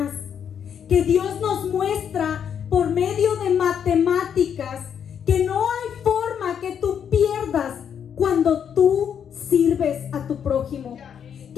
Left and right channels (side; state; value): right; quieter; 8.1 dB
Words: Que Dios nos muestra por medio de matemáticas que no hay forma que tú pierdas cuando tú sirves a tu prójimo.